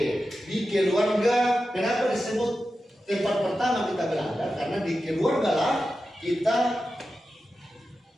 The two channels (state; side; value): normal; both; correlation 0.92